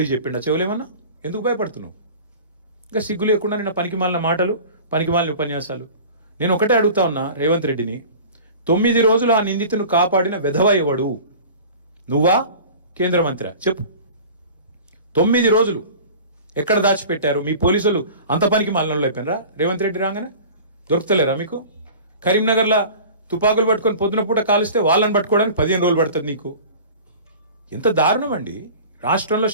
చెప్పిండా చెవులేమన్నా? ఎందుకు భయపడుతున్నావు? ఇంకా సిగ్గు లేకుండా నిన్న పనికిమాలిన మాటలు, పనికిమాలిన ఉపన్యాసాలు. నేను ఒకటే అడుగుతా ఉన్నా రేవంత్ రెడ్డిని, 9 రోజులు ఆ నిందితును కాపాడిన వెధవ ఎవడు? నువ్వా కేంద్ర మంత్రి? చెప్పు. 9 రోజులు ఎక్కడ దాచిపెట్టారు? మీ పోలీసులు అంత పనికి మాలినోళ్ళు అయిపోయినరా? రేవంత్ రెడ్డి రాగానే దొరుకుతలేరా మీకు? కరీంనగర్లో తుపాకులు పట్టుకొని పొద్దున పూట కాలిస్తే వాళ్ళని పట్టుకోవడానికి 15 రోజులు పడుతుంది నీకు. ఎంత దారుణం అండి! రాష్ట్రంలో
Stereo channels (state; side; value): inverted; both; correlation -0.40